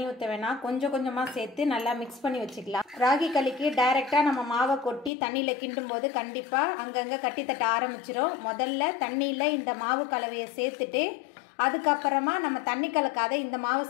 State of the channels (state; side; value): drops out; right; at 5.1 s